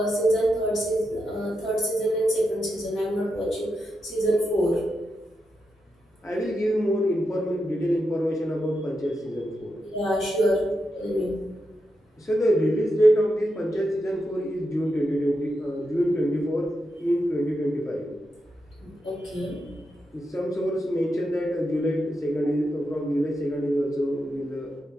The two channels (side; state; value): both; normal; correlation 0.86